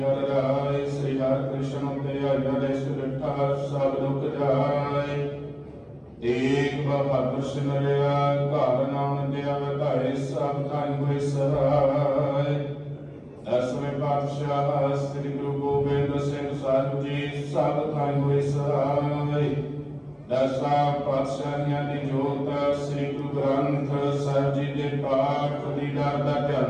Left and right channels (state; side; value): identical; both; correlation 1.00